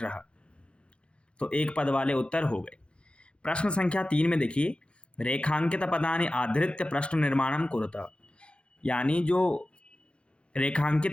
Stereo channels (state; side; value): late; right; 0.058 ms